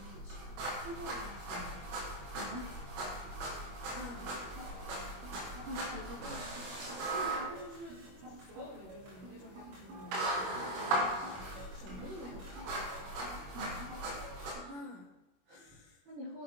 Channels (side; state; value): left; late; 21 ms